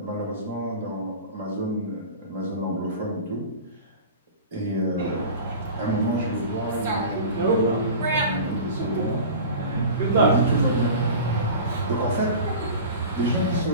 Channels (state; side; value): inverted; both; correlation -0.36